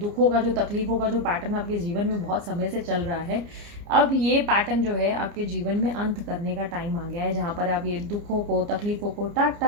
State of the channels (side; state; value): left; late; 29 ms